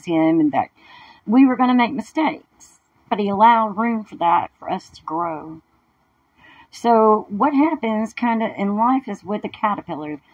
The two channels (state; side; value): identical; both; correlation 1.00